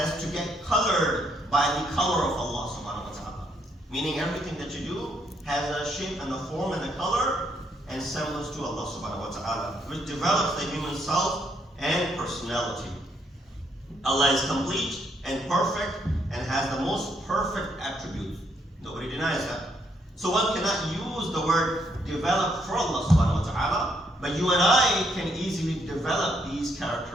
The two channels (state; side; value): normal; both; correlation 0.73